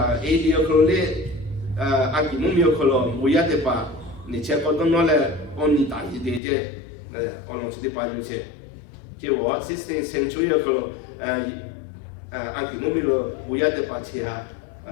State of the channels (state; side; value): drops out; right; at 6.4 s